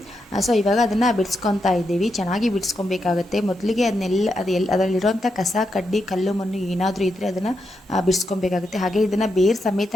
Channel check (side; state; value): both; normal; correlation 0.84